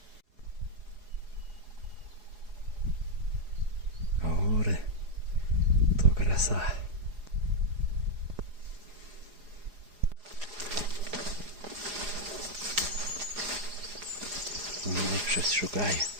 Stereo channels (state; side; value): late; left; 4.8 ms